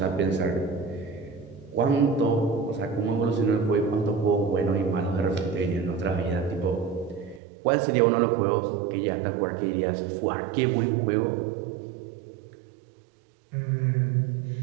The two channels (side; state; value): left; drops out; at 7.4 s